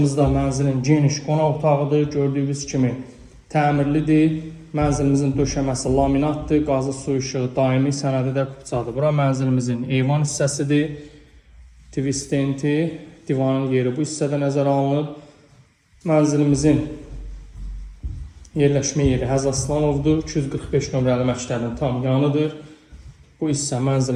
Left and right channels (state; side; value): identical; both; correlation 1.00